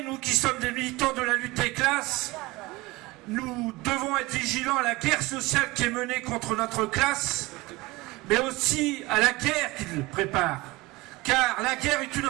nous qui sommes des militants de la lutte des classes, nous devons être vigilants à la guerre sociale qui est menée contre notre classe, mais aussi à la guerre qu'ils préparent. Car la guerre est une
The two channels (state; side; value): quieter; left; 21.5 dB